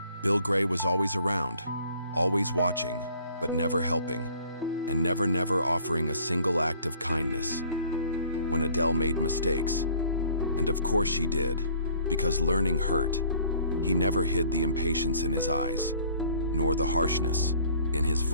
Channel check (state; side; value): inverted; both; correlation -0.56